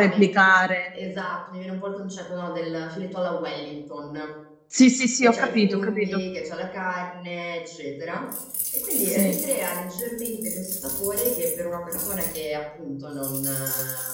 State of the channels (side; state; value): both; identical; correlation 1.00